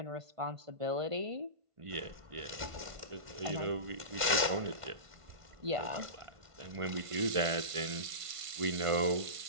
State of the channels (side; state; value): left; late; 1.5 ms